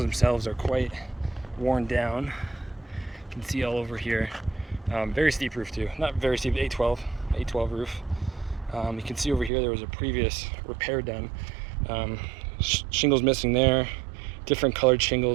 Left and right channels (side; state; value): left; drops out; at 9.5 s